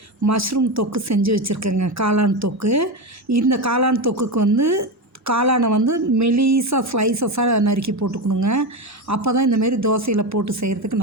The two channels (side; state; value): both; normal; correlation 0.17